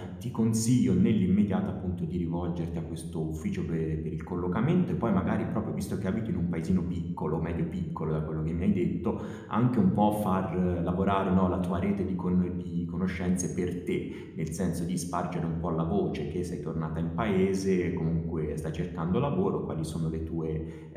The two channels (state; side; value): identical; both; correlation 1.00